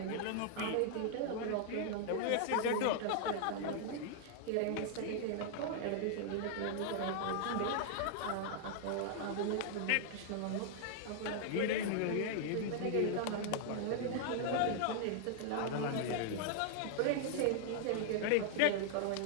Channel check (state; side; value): different; both; correlation -0.01